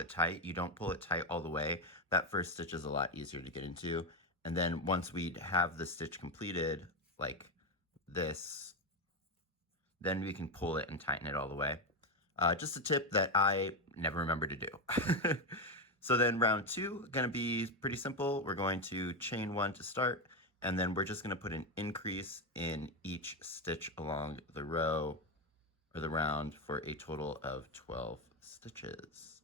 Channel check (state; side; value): normal; both; correlation 0.11